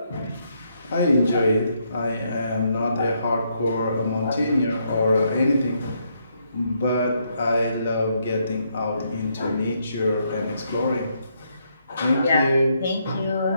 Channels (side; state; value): both; inverted; correlation -0.76